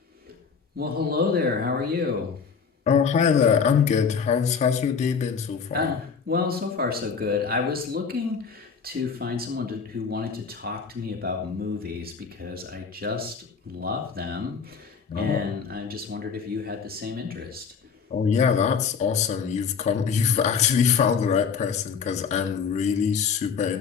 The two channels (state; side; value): quieter; right; 6.0 dB